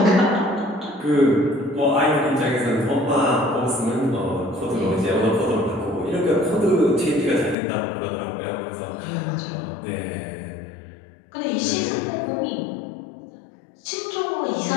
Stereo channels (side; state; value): right; drops out; at 7.6 s